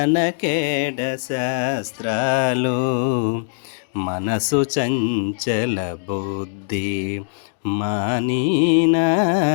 శాస్త్రాలు, మనసు చంచల బుద్ధి మానీనా.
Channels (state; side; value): silent; right; digital silence